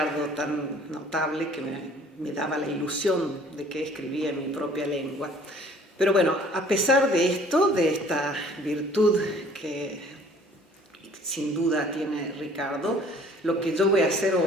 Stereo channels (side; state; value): both; normal; correlation 0.54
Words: tan notable que me daba la ilusión de que escribía en mi propia lengua. Pero bueno, a pesar de esto, de esta virtud que sin duda tiene Riccardo, lo que yo voy a hacer